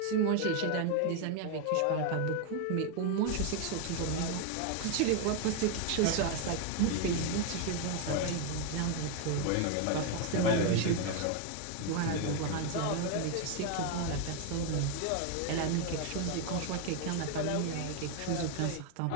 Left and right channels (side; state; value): both; different; correlation 0.01